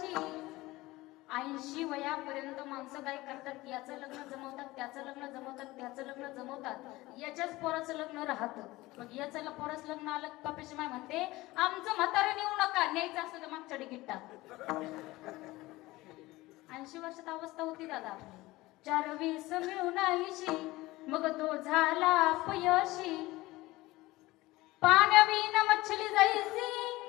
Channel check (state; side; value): quieter; right; 19.4 dB